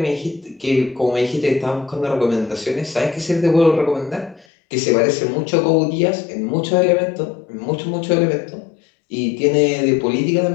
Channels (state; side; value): drops out; right; at 4.5 s